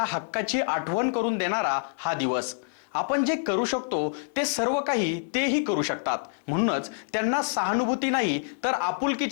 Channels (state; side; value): silent; right; digital silence